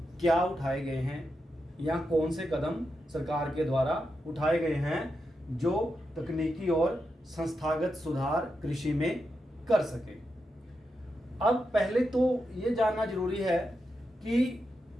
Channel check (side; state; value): both; normal; correlation 0.87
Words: क्या उठाए गए हैं या कौन से कदम सरकार के द्वारा उठाए गए हैं जो तकनीकी और संस्थागत सुधार कृषि में कर सके। अब पहले तो ये जानना जरूरी है कि